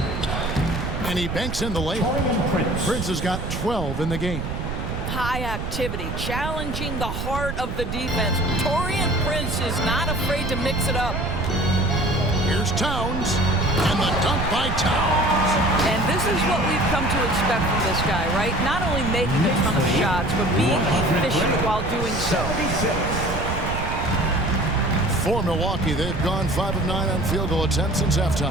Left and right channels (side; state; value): right; noise; rumble, 4 dB below the sound